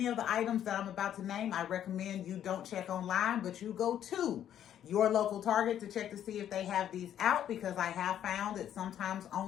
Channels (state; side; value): quieter; right; 10.4 dB